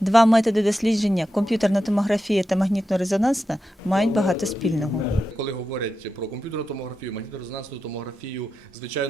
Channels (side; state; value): both; normal; correlation 0.89